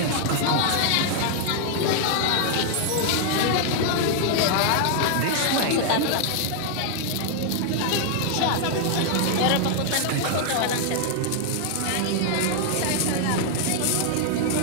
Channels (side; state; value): both; different; correlation 0.00